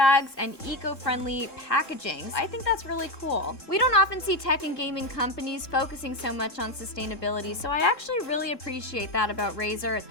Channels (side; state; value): right; late; 3.7 ms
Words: and eco-friendly packaging. I think that's really cool. We don't often see tech and gaming companies focusing so much on sustainability, so I actually really appreciate that about Razer.